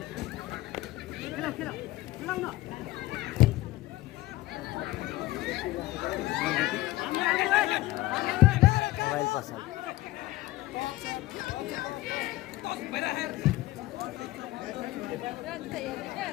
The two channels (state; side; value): quieter; right; 17.4 dB